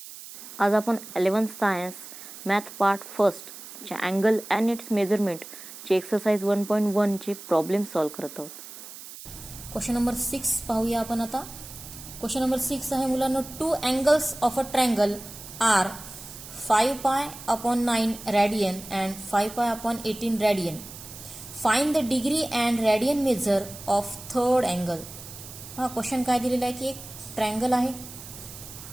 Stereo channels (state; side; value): noise; right; hiss, 14 dB below the sound